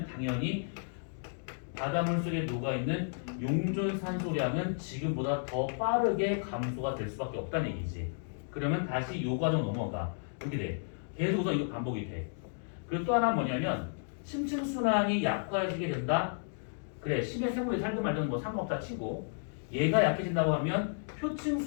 당연히 바닷물 속에 녹아있는 용존 산소량은 지금보다 더 빠르게 감소가 될 수밖에 없다는 얘기지. 그러면 다시 요 과정 넘어가. 이렇게 돼. 계속해서 이거 반복이 돼. 그리고 또 하나 뭐냐면 심층순환이 약화해지게 된다. 그래, 심해 생물이 살든 말든 뭐 상관없다 치고 얘가 약해진다고 하면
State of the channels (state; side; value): silent; right; digital silence